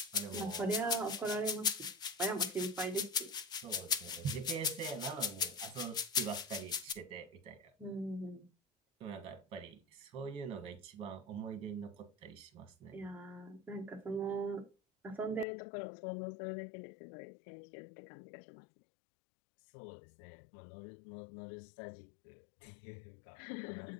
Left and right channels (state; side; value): drops out; right; at 15.5 s